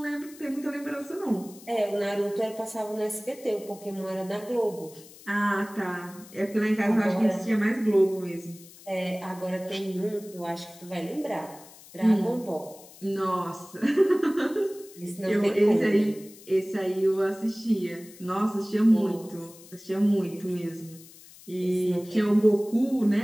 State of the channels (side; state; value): left; noise; hiss, 21 dB below the sound